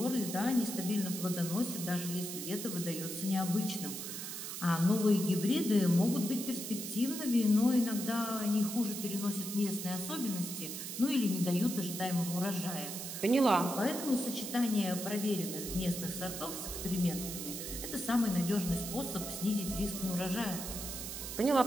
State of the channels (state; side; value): noise; right; hiss, 7 dB below the sound